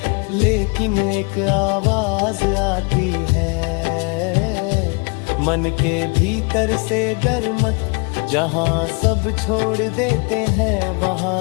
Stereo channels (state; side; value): quieter; right; 33.8 dB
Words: लेकिन एक आवाज आती है मन के भीतर से, डर मत, जहाँ सब छोड़ देते हैं